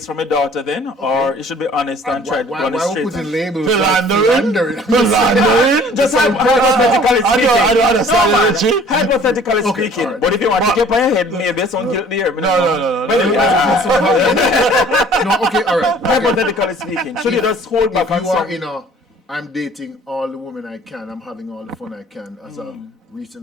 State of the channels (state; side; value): normal; both; correlation 0.52